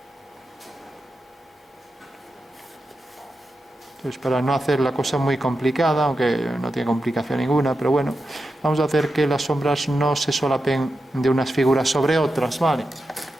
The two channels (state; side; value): normal; both; correlation 0.89